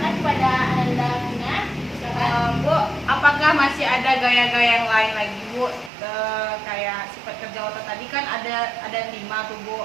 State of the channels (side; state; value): left; drops out; at 5.9 s